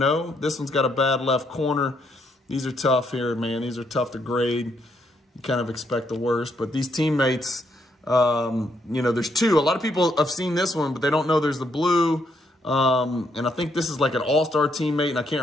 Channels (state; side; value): normal; both; correlation 0.74